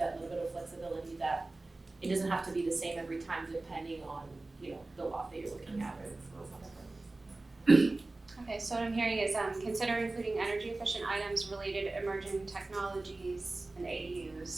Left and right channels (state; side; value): quieter; left; 3.1 dB